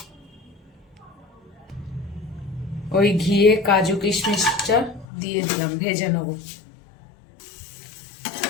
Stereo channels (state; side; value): drops out; right; at 5.1 s